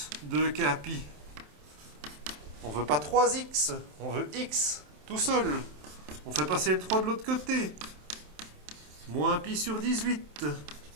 2k pi. On ne veut pas 3x, on veut x tout seul. On fait passer le 3 de l'autre côté. Moins pi sur 18,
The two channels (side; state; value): left; late; 27 ms